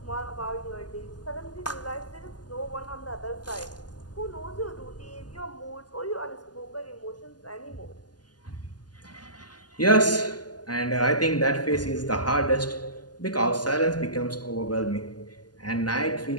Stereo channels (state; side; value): late; right; 0.70 ms